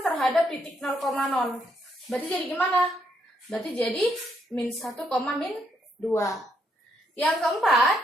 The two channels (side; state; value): both; normal; correlation 0.75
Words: terhadap titik 0,0. Berarti jadi gimana? Berarti jadi min 1, min 2. Yang keempat,